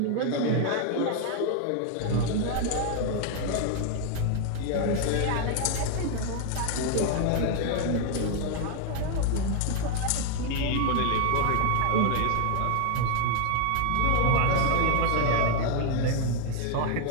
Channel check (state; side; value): different; both; correlation 0.01